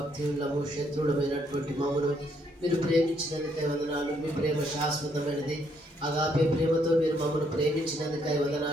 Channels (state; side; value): normal; both; correlation 0.71